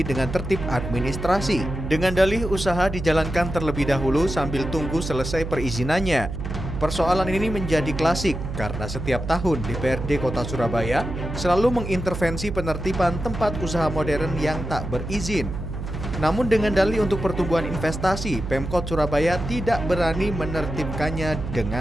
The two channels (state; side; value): noise; right; hum, 6 dB below the sound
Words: dengan tertib administrasi. Dengan dalih usaha dijalankan terlebih dahulu sambil tunggu selesai perizinannya. Persoalan ini menjadi klasik karena setiap tahun DPRD Kota Surabaya selalu mengintervensi penertiban tempat usaha modern yang tak berizin. Namun dengan dalih untuk pertumbuhan investasi, Pemkot Surabaya tidak berani menertibkannya